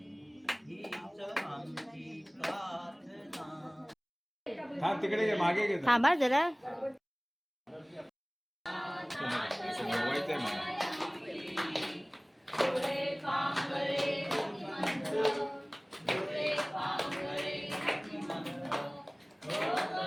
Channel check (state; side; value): identical; both; correlation 1.00